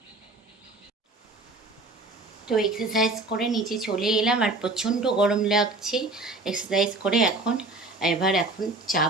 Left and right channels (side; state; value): left; quieter; 3.1 dB